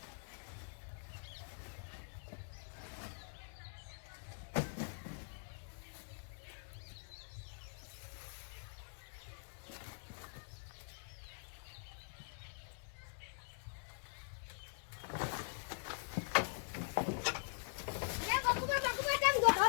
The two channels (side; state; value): right; silent; digital silence